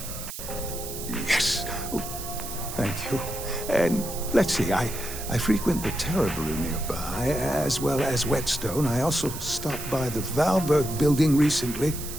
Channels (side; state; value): right; noise; hiss, 9 dB below the sound